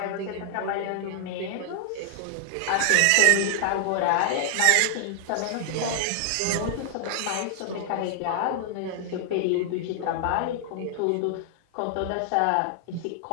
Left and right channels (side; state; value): both; different; correlation 0.00